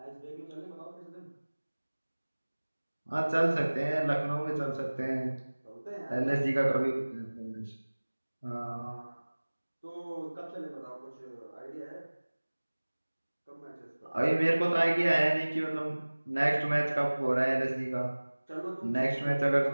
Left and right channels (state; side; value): inverted; both; correlation -1.00